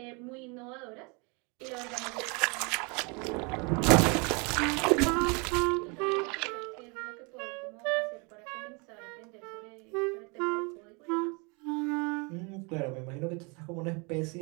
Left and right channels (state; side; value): quieter; left; 31.3 dB